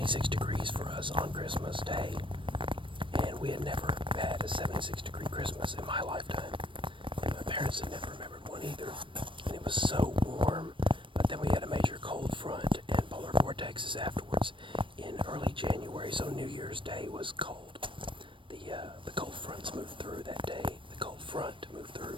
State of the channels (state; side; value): late; left; 0.25 ms